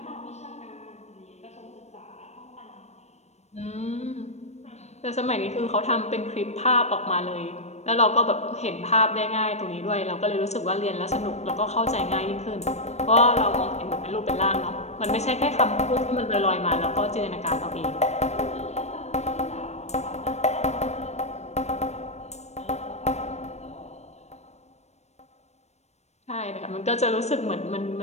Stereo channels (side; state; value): right; late; 0.32 ms